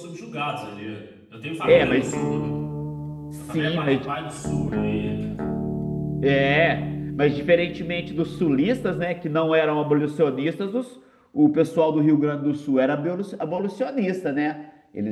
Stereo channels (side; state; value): both; identical; correlation 1.00